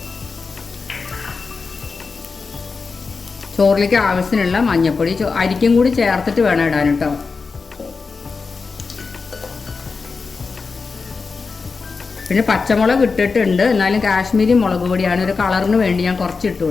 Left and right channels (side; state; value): right; quieter; 4.6 dB